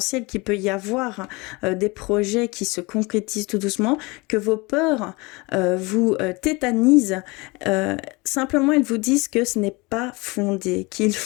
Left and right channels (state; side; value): quieter; right; 25.5 dB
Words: qu'il peut y avoir, des projets qui se concrétisent tout doucement, que vos peurs vous tétanisent, simplement elles vous disent que ce n'est pas fondé, qu'il